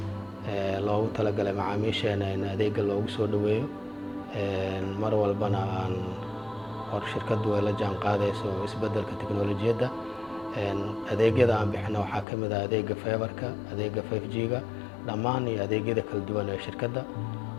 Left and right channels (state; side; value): drops out; right; at 12.2 s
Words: loogu talagalay macaamiisheena in adeegga loogu soo dhaweeyo mar walbana aan hor shirkadu ay la jaan qaadayso isbeddelka tiknoolajiyadda adeegyada aan bixino waxaa ka mid ah adeegga fiberka adeegga 5G-ga dhammaan iyo adeegyada kala duwan ee shirkadda